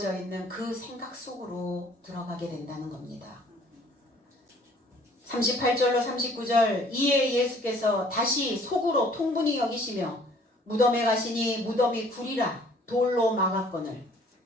있는 그 생각 속으로 들어가게 된다는 겁니다. 38절로 39절 이에 예수께서 다시 속으로 통분히 여기시며 무덤에 가시니 무덤이 구리라 돌로 막았거늘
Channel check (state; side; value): normal; both; correlation 0.56